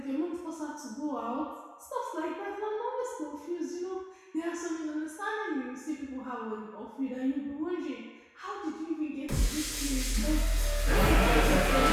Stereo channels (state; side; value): identical; both; correlation 1.00